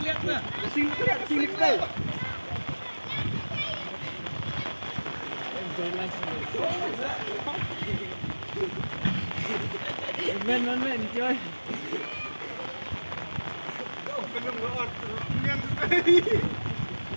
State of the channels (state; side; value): inverted; both; correlation -1.00